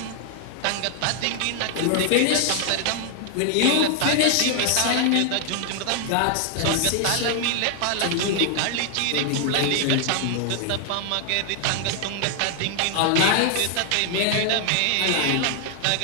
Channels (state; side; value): different; both; correlation 0.00